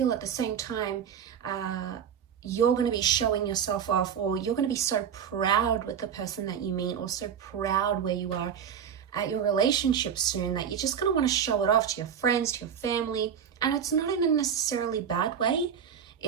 at the same time, you're going to be showing yourself off, or you're going to be so proud with the person that you meet, or so proud where you are at your relationship soon, that you're just going to want to show it off to your friends, to your family. And it's not in a necessarily bad way.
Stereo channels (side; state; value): left; quieter; 8.0 dB